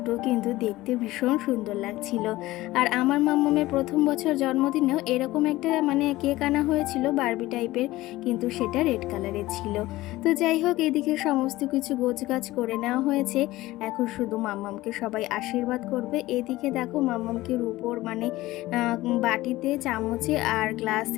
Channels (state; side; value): quieter; right; 17.7 dB